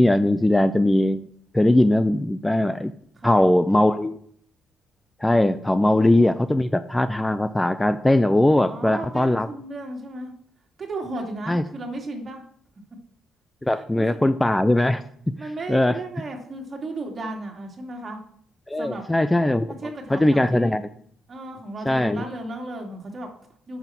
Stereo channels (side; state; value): both; normal; correlation 0.97